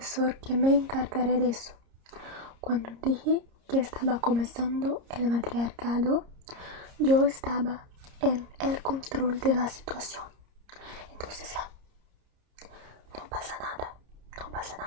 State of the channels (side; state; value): left; late; 30 ms